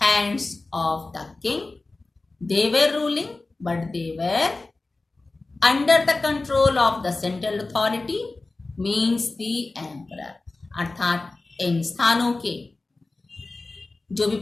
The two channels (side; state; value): right; quieter; 3.3 dB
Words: of the king. They were ruling, but they were under the control of the central authority, means the emperor. अर्थात इन स्थानों के जो भी